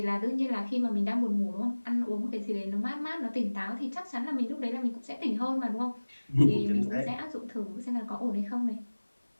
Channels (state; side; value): inverted; both; correlation -1.00